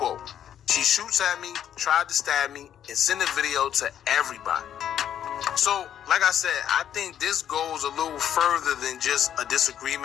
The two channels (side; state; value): right; quieter; 10.0 dB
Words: "She shoots at me, tried to stab me, and sent a video to everybody." So, like I said, I think this goes a little further than just a